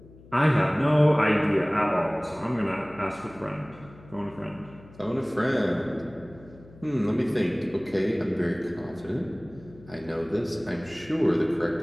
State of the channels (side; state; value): left; noise; hum, 22 dB below the sound